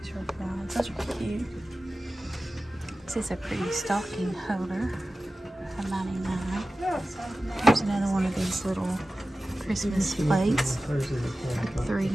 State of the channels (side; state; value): both; normal; correlation 0.95